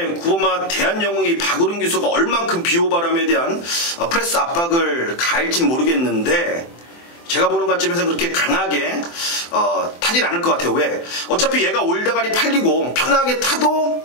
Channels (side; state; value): right; late; 24 ms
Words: 9번마 대한영웅이 박우른 기수가 얼만큼 비호바람에 대한 프레스 압박을 가할진 모르겠는데 제가 보는 관점에서 그렇게 강하게 타진 않을 것 같아요. 왜? 어차피 얘가 올다가리 팔리고 편하게 타도